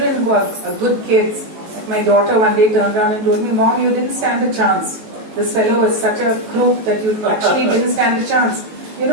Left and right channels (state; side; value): late; left; 19 ms